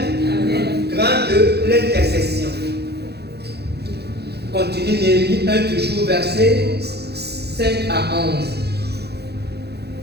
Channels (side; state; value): left; late; 0.48 ms